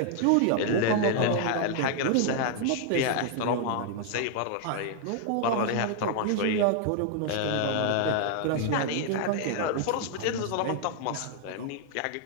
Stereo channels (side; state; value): both; different; correlation 0.00